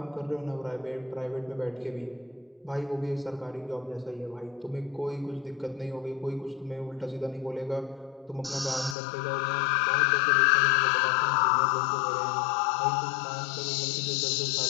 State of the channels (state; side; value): drops out; right; at 9.0 s